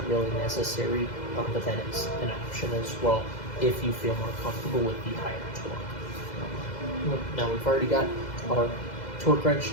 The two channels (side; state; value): right; late; 2.0 ms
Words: really necessary, but that is an option as well if you feel more comfortable with the higher torque. Now we've already got our torque wrench